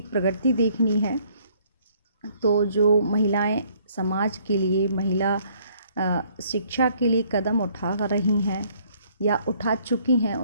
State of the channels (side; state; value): both; inverted; correlation -0.63